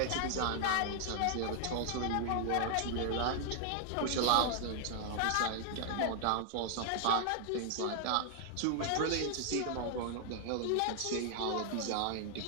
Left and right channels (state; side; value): different; both; correlation 0.00